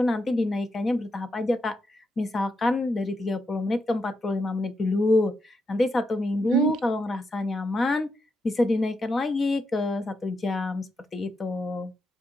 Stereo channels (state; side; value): normal; both; correlation 0.84